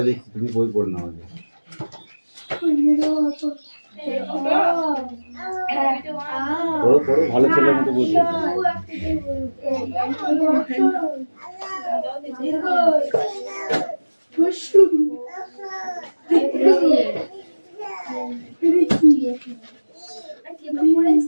দেখছি তুমি বই পড়ে নাও আগে পড়ো পড়ো ভালো ছেলের মতো বই পড়ো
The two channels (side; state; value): both; inverted; correlation -1.00